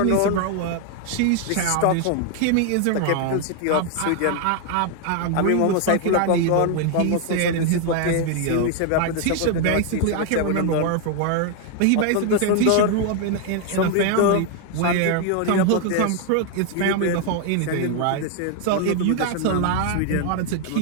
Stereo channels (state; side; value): different; both; correlation 0.00